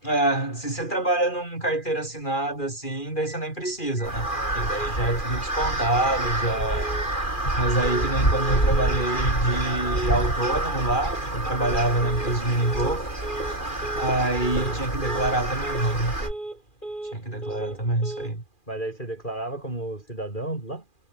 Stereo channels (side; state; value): right; late; 2.4 ms